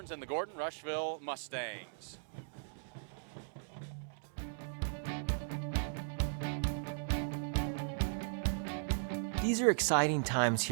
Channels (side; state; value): left; silent; 53 dB below the other